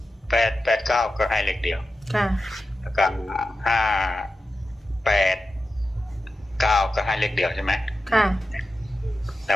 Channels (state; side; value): normal; both; correlation 0.92